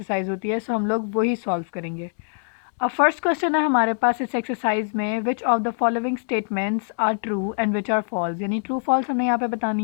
होती है, सो हम लोग वही सॉल्व करेंगे। अब फर्स्ट क्वेश्चन है हमारे पास इस एक्सरसाइज में, which of the following statements are true and which are false, यानी ट्रू फॉल्स हमने यहाँ पे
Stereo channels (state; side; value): silent; right; digital silence